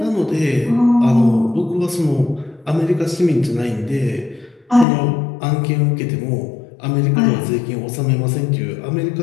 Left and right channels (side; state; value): right; drops out; at 4.9 s